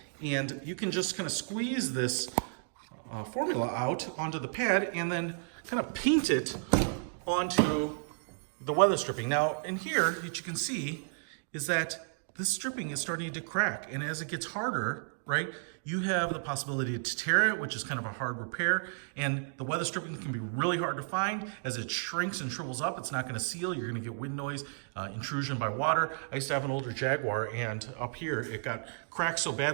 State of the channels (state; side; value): silent; left; digital silence